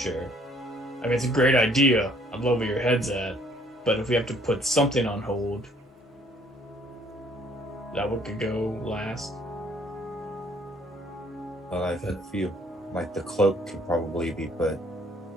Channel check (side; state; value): both; normal; correlation 0.61